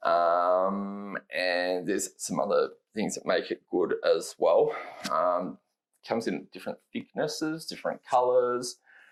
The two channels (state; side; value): identical; both; correlation 1.00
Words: and there's some other things that make it good as well. Comes in different thicknesses, different colors,